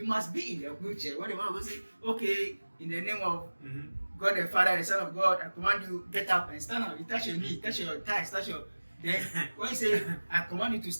be in the wheelchair. When the man of God says, okay, in the name of God the Father, the Son of God, I command you, get up and stand up. You touch your knee, touch your thighs, touch your... Then when you say, I command you to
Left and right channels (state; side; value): inverted; both; correlation -1.00